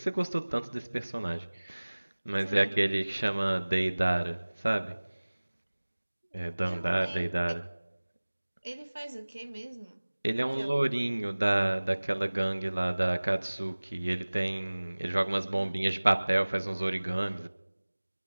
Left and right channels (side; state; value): both; inverted; correlation -1.00